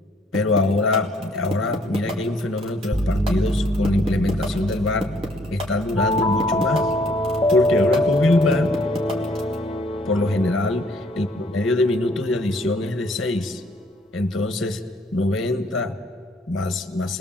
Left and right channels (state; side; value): normal; both; correlation 0.64